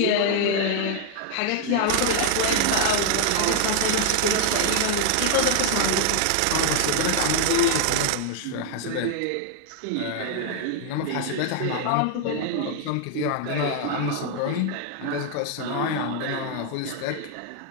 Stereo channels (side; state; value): both; different; correlation 0.00